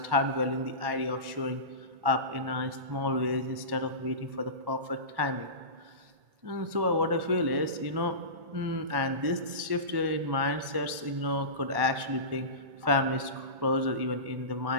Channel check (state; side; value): late; left; 1.1 ms